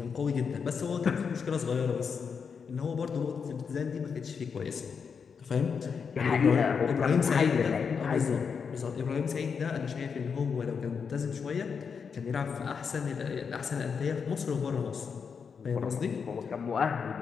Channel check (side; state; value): right; quieter; 6.1 dB